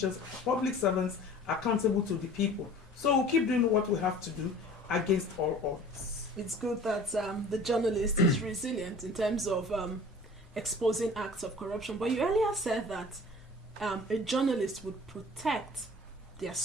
public servants accountable to the people. So we'll keep doing what we have to do against all odds. It's good that the journalist is resilient in terms of exposing acts of corruption. But you earlier said that a journalist would protect their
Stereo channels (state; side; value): normal; both; correlation 0.45